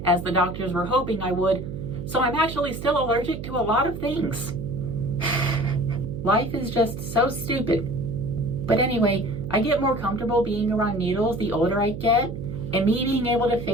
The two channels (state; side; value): noise; right; hum, 8 dB below the sound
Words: as the doctors were hoping I would, so I'm actually still allergic to a lot of things. Life is just so stupid. But anyway, I get more comfortable being around needles the older I get, and me being able to